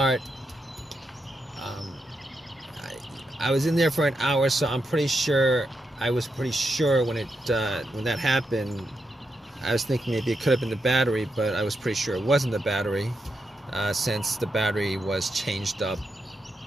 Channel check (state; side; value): normal; both; correlation 0.84